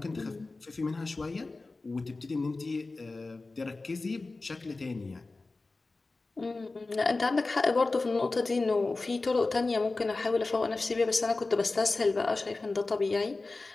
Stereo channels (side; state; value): right; quieter; 3.5 dB